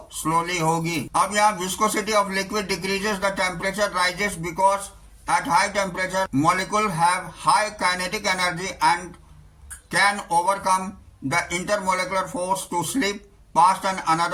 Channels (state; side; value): identical; both; correlation 1.00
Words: स्लोली होगी। अब यहाँ viscosity of liquid decreases the temperature rises because at high temperature molecule have high kinetic energy and can overcome the intermolecular force to slip past and